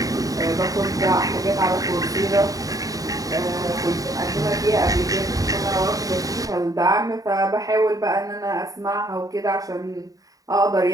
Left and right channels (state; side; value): late; left; 0.17 ms